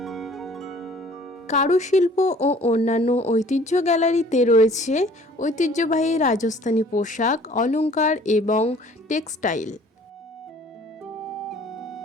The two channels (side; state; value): both; normal; correlation 0.53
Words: কারুশিল্প ও অন্যান্য ঐতিহ্য গ্যালারিতে রয়েছে ঐতিহ্যবাহী রাজস্থানী পোশাক, অলংকার এবং টেক্সটাইল।